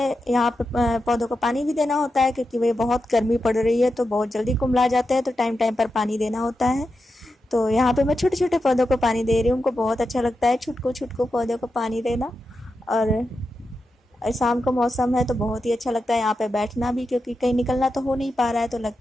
यहाँ पे पौधों को पानी भी देना होता है क्योंकि वे बहुत गर्मी पड़ रही है तो बहुत जल्दी कुम्हला जाते हैं, तो टाइम टाइम पर पानी देना होता है। तो यहाँ पे मैं छोटे छोटे पौधों को पानी दे रही हूँ, उनको बहुत अच्छा लगता है छुटको छुटको पौधों को पानी देना। और शाम का मौसम है तो बहुत ही अच्छा लगता है यहाँ पे बैठना भी, क्योंकि कहीं निकलना तो हो नहीं पा रहा है, तो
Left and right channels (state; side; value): normal; both; correlation 0.89